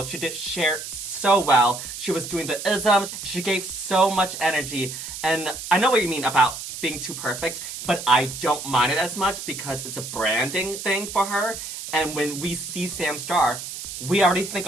She did share so well. She was doing the isms. She gave so much energy. And I know what you mean about being too perfect, but I don't mind it as much because it's a branding thing for her. And when we see Sam Star, we already think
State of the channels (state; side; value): noise; right; hiss, 9 dB below the sound